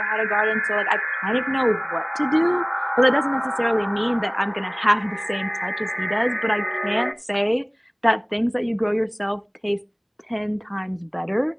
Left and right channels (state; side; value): identical; both; correlation 1.00